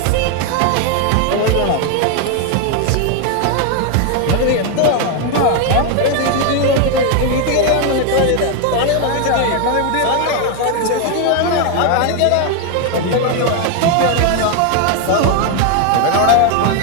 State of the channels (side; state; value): both; different; correlation 0.01